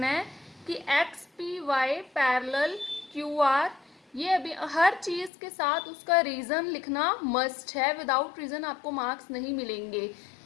है कि X P Y parallel Q R, ये अभी हर चीज़ के साथ उसका रीज़न लिखना मस्ट है, विदाउट रीज़न आपको मार्क्स नहीं मिलेंगे,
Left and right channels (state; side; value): drops out; right; at 5.3 s